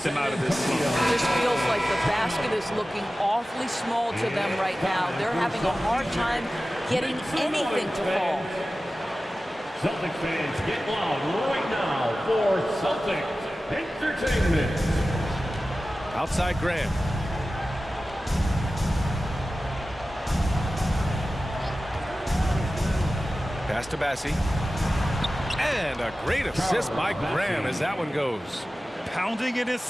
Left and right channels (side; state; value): both; normal; correlation 0.95